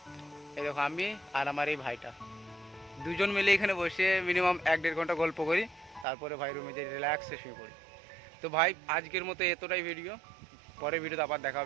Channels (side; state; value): left; drops out; at 6.1 s